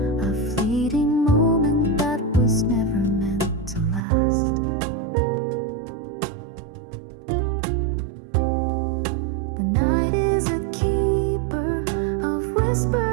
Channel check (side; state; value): left; drops out; at 4.0 s